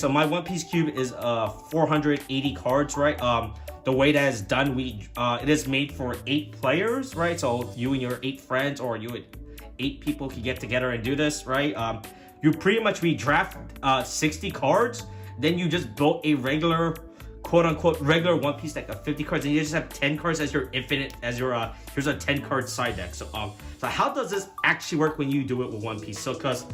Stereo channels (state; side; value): identical; both; correlation 1.00